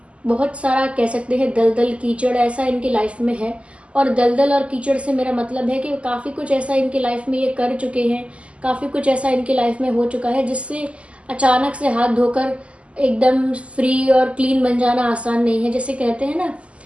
बहुत सारा कह सकते हैं दलदल कीचड़ ऐसा इनकी लाइफ में है। और दलदल और कीचड़ से मेरा मतलब है कि काफ़ी कुछ ऐसा इनकी लाइफ में ये कर चुके हैं, काफ़ी कुछ ऐसा इनकी लाइफ में हो चुका है जिससे अचानक से हाथ धोकर एकदम फ्री और क्लीन बन जाना आसान नहीं है। जैसे कहते हैं ना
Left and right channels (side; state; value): left; late; 0.058 ms